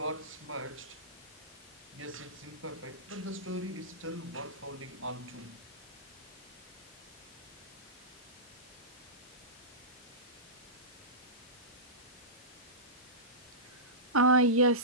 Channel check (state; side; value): normal; both; correlation -0.19